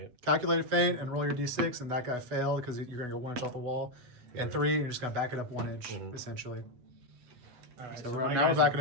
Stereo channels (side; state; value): left; late; 8.1 ms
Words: Calculated feint and roll your d6, and that guy failed because you're going to go 1 inch off the wall. And 3, you're just going to back it up 1 inch, essentially. All right, So my now we're guys backing